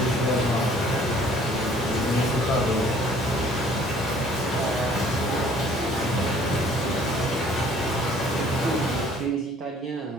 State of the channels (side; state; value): both; normal; correlation 0.56